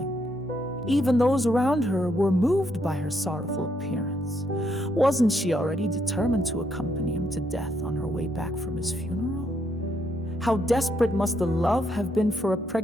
Even those around her were moved by her sorrowful appearance. Wasn't she already determined to accompany him to death on her way back from his funeral? How desperate must the love have been for a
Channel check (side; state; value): both; normal; correlation 0.75